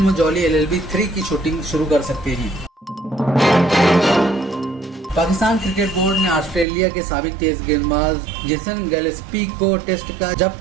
जॉली LLB 3 की शूटिंग शुरू कर सकते हैं। पाकिस्तान क्रिकेट बोर्ड ने ऑस्ट्रेलिया के साबिक तेज गेंदबाज जेसन गिलेस्पी को टेस्ट का,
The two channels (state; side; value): drops out; left; at 6.7 s